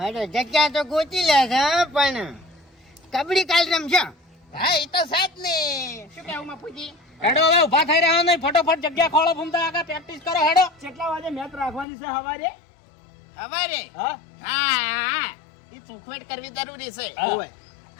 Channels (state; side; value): drops out; right; at 11.9 s